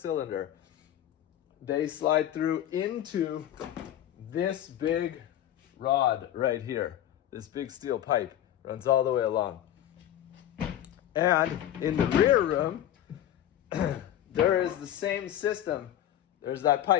They slide through into this big rod right here. This big steel pipe runs all the way along. And in the rear room, there is the same system. There's that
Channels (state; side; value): quieter; right; 11.7 dB